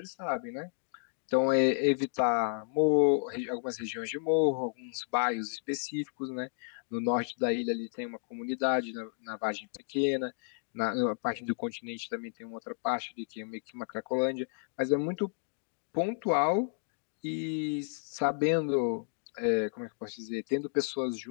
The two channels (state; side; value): silent; right; digital silence